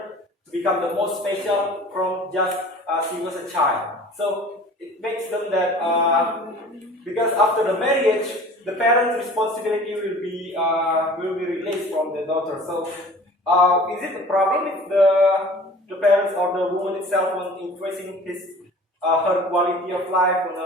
to become the most special from just she was a child. So it makes them that because after the marriage, the parents' responsibility will be released from the daughter. So is it a problem if the parents or the woman itself was increasing her quality of life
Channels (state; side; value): normal; both; correlation 0.45